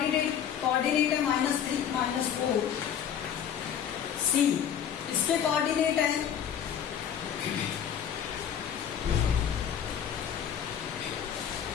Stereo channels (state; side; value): quieter; right; 8.8 dB